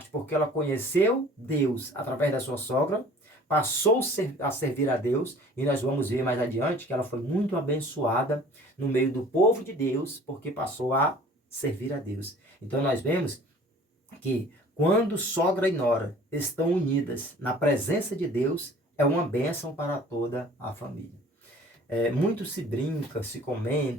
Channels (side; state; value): both; normal; correlation 0.49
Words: porque ela conheceu Deus através da sua sogra, passou a servir a Deus, e nós vamos ver mais adiante que ela foi muito abençoada no meio do povo de Deus, porque passou a servir a Deus. Então nós vemos que quando sogra e nora estão unidas na presença de Deus, é uma bênção para toda a família. Muito se brinca, se